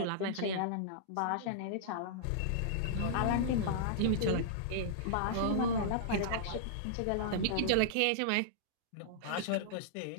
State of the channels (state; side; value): different; both; correlation -0.02